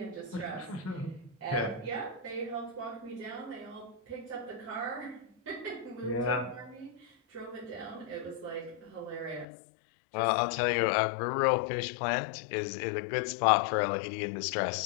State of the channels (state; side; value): drops out; right; at 9.5 s